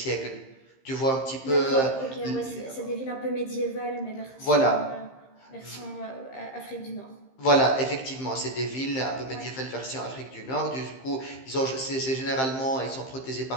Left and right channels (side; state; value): right; late; 15 ms